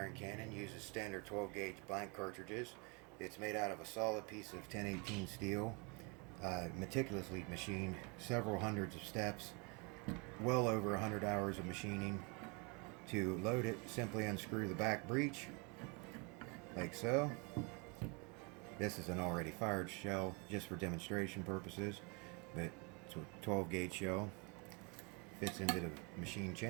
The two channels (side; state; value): left; quieter; 31.9 dB